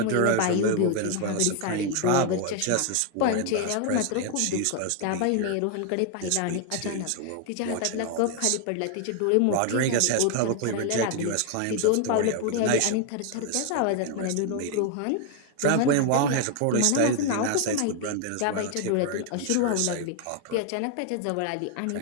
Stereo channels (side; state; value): both; different; correlation 0.01